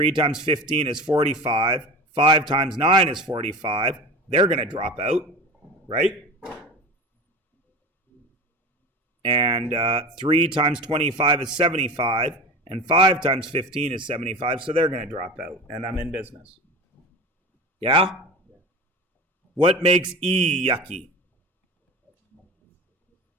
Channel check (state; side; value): normal; both; correlation 0.32